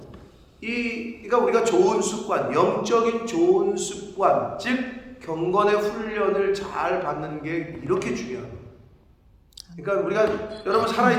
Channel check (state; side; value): identical; both; correlation 1.00